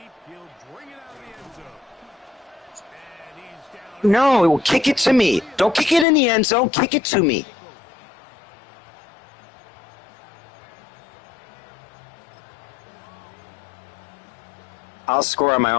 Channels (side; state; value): right; drops out; at 6.1 s